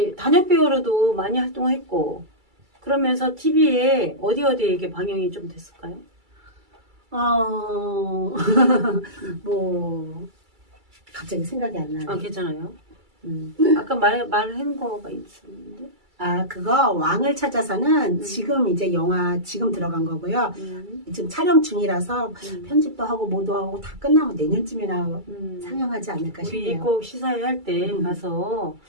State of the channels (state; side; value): late; left; 2.3 ms